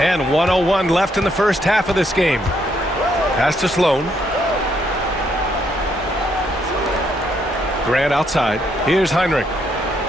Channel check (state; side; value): normal; both; correlation 0.73